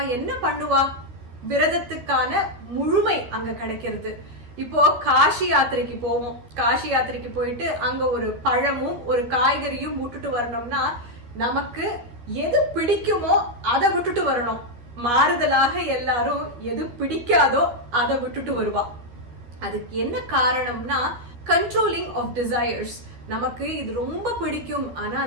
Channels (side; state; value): left; late; 12 ms